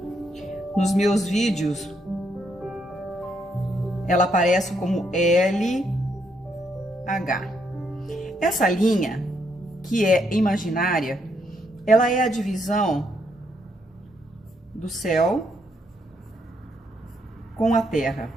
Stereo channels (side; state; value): both; normal; correlation 0.75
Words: Nos meus vídeos, ela aparece como LH. Essa linha, que é imaginária, ela é a divisão do céu com a terra.